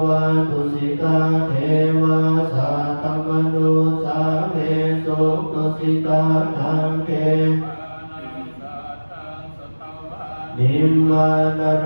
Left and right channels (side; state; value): both; inverted; correlation -1.00